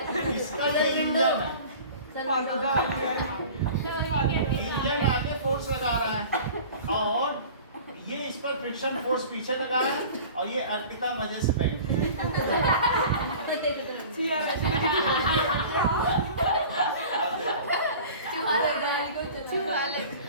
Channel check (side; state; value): both; inverted; correlation -0.41